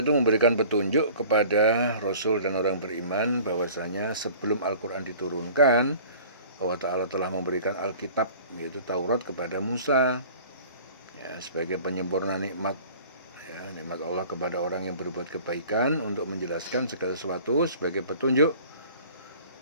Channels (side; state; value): both; inverted; correlation -0.46